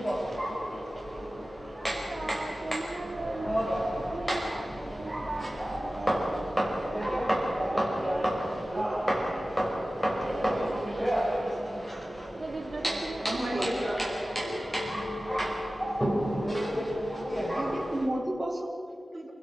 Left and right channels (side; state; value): both; normal; correlation 0.96